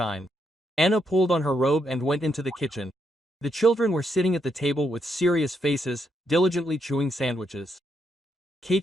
Anna pulled on her robe and went into the kitchen. The children were sitting at the table with serious faces, diligently chewing sandwiches.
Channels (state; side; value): normal; both; correlation 0.78